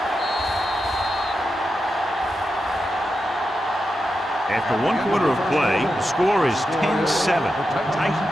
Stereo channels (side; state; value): both; normal; correlation 0.88